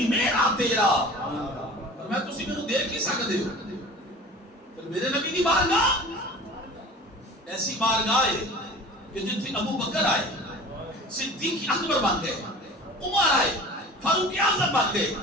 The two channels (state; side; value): normal; both; correlation 0.40